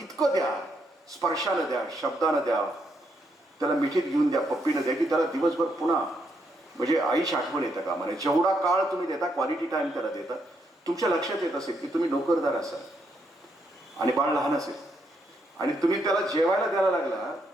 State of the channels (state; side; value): normal; both; correlation 0.77